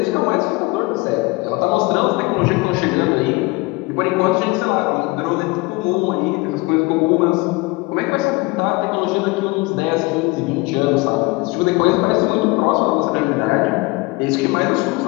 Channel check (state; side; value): quieter; right; 24.5 dB